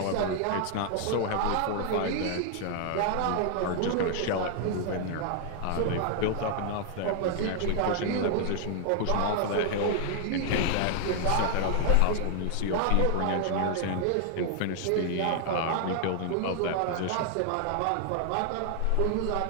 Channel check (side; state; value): both; different; correlation 0.00